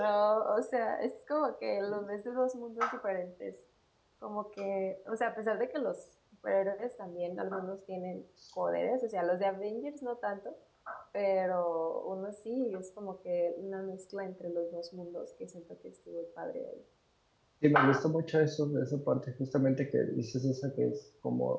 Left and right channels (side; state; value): both; identical; correlation 1.00